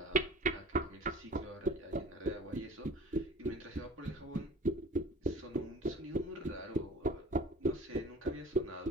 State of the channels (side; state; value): both; normal; correlation 0.42